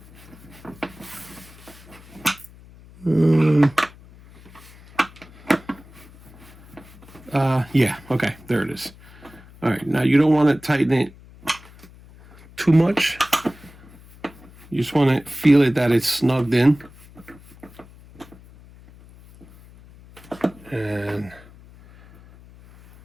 Yeah, okay, there it is. All right, now you don't want to tighten it too much. You just want to feel it that it's snugged in. And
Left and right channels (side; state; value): left; noise; hum, 22 dB below the sound